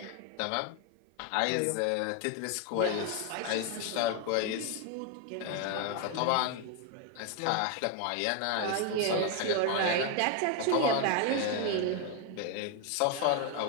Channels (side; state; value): both; different; correlation 0.01